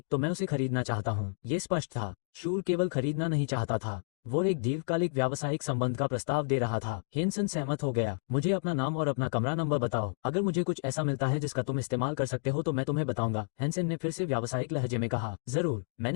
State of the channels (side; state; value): right; silent; digital silence